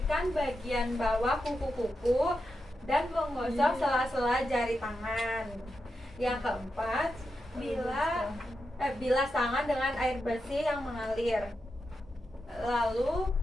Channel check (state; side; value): normal; both; correlation 0.88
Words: bagian bawah kuku-kuku dan menggosok sela-sela jari tangan. Yang keempat, bilas tangan dengan air bersih yang mengalir. Lalu